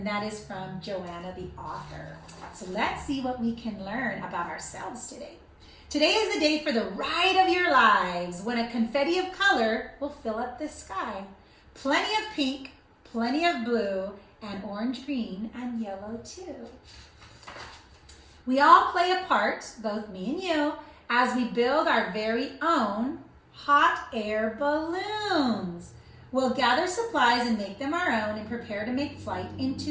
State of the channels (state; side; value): identical; both; correlation 1.00